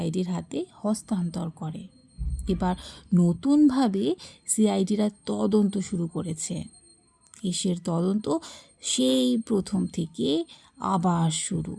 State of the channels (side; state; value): both; identical; correlation 1.00